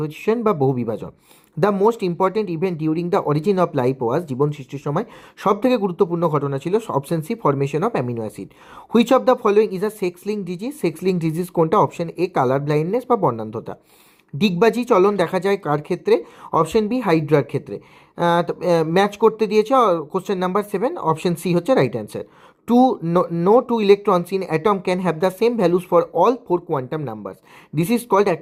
বা বহু বিভাজন। The most important event during the origin of life was, জীবন সৃষ্টির সময় সব থেকে গুরুত্বপূর্ণ ঘটনা ছিল option C formation of amino acid. Which of the following is a sex link disease, sex link disease কোনটা? অপশন এ কালার ব্লাইন্ডনেস বা বর্ণান্ধতা। ডিগবাজি চলন দেখা যায় কার ক্ষেত্রে? অপশন বি হাইড্রার ক্ষেত্রে। ম্যাচ করতে দিয়েছে কোশ্চেন নাম্বার 7, অপশন সি হচ্ছে right answer. No two electrons in atom can have the same values for all 4 quantum numbers. This is called,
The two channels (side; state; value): both; identical; correlation 1.00